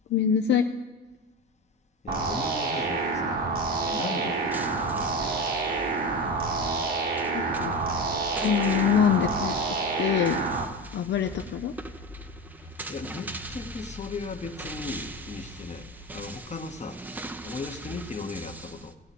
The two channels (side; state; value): both; normal; correlation 0.23